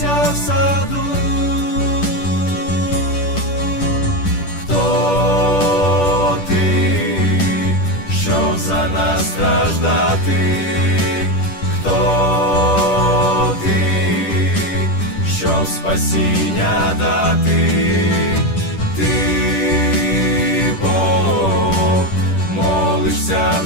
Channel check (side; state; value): right; late; 10 ms